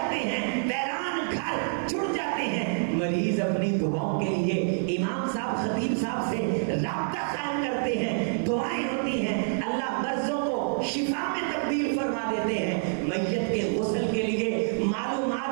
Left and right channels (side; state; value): left; silent; 60 dB below the other